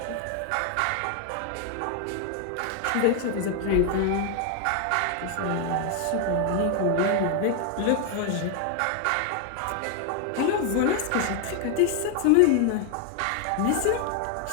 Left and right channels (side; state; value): both; different; correlation 0.00